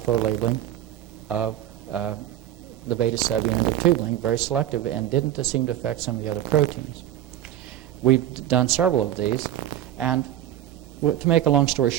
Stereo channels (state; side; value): quieter; left; 12.1 dB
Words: labeling of the beta subunit of tubulin, very selective, and didn't seem to affect some of the other proteins. We've done several of these, and to make a long story